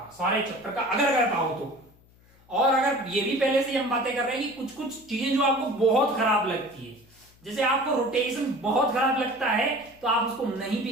का अगर कर पाओ तो। और अगर ये भी पहले से हम बातें कर रहे हैं कि कुछ चीजें जो आपको बहुत खराब लगती है, जैसे आपको रोटेशन बहुत खराब लगता है तो आप उसको नहीं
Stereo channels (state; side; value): noise; left; hum, 29 dB below the sound